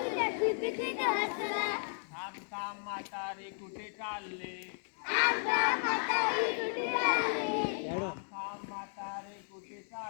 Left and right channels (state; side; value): silent; right; 55 dB below the other